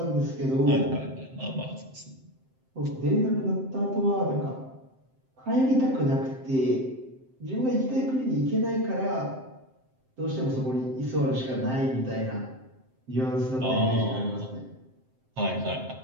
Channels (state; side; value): late; left; 7.7 ms